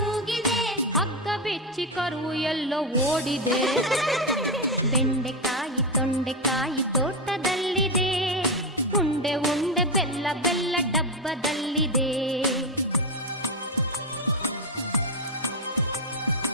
ಹಗ್ಗ ಬಿಚ್ಚಿ ಕರು ಎಲ್ಲೋ ಓಡಿದೆ. ಬೆಂಡೆಕಾಯಿ ತೊಂಡೆಕಾಯಿ ತೋಟದಲ್ಲಿದೆ, ಉಂಡೆ ಉಂಡೆ ಬೆಲ್ಲ ಬೆಲ್ಲ ಡಬ್ಬದಲ್ಲಿದೆ.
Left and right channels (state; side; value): normal; both; correlation 0.09